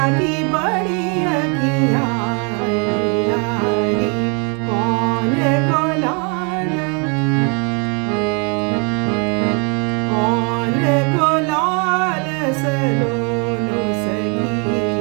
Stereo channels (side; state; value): left; quieter; 35.1 dB